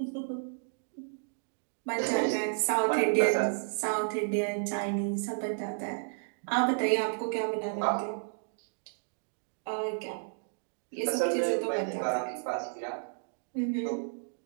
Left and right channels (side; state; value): left; silent; digital silence